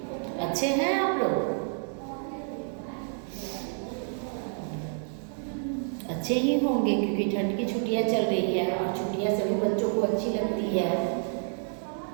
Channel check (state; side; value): silent; left; 55 dB below the other